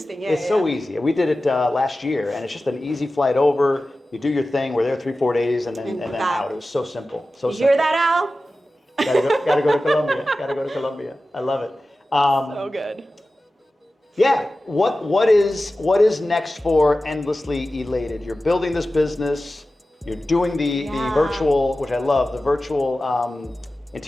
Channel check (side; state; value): both; normal; correlation 0.95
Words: It's so easy. We did it last year, and it's just an easy flight over. You do your thing. We're there 3-4 days, and then out. It was so simple. So you hear that, Al? Gotta go to Colombia. Gotta go to Colombia. I love it. So good. Yeah, what is next for Endlessly Elated? You're building this business, you're doing the virtual, which I love, the virtual